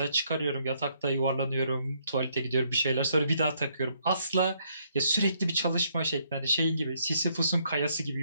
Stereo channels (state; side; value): inverted; both; correlation -0.71